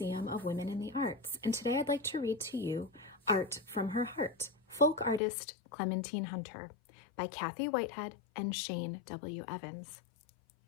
of Women in the Arts, and today I'd like to read to you Art from Her Heart, Folk Artist Clementine Hunter by Kathy Whitehead and Shane W. Evans.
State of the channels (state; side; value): drops out; right; at 5.2 s